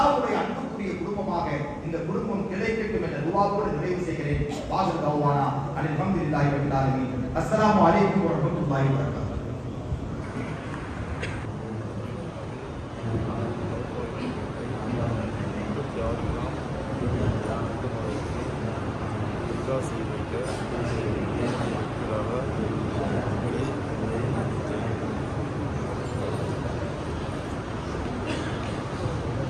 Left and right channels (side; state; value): both; identical; correlation 1.00